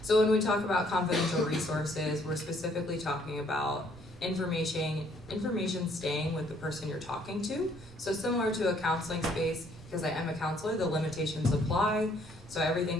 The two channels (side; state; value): both; normal; correlation 0.65